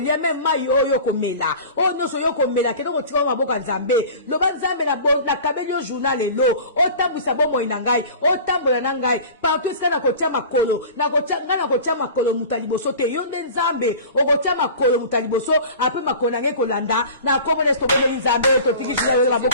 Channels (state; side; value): inverted; both; correlation -0.39